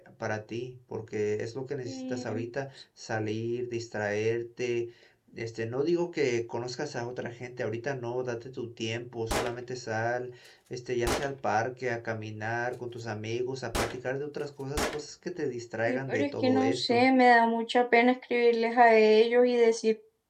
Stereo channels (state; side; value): identical; both; correlation 1.00